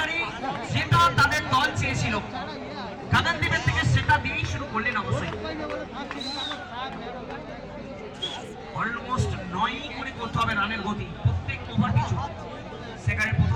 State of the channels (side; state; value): both; identical; correlation 1.00